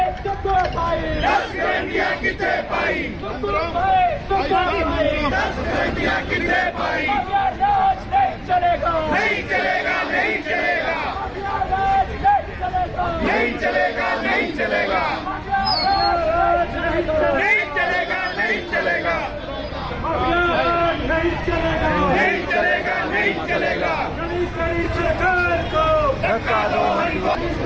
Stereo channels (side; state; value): both; identical; correlation 1.00